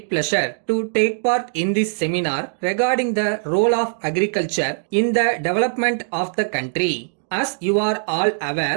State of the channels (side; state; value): left; silent; digital silence